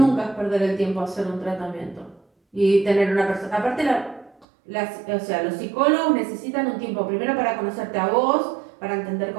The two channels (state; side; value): drops out; left; at 4.5 s